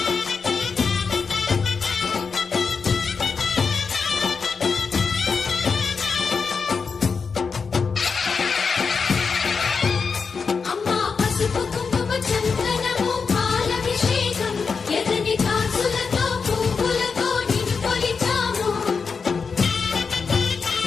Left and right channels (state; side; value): quieter; right; 5.3 dB